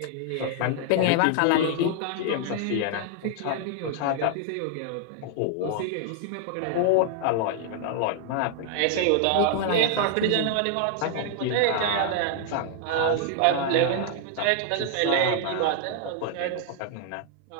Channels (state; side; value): different; both; correlation 0.00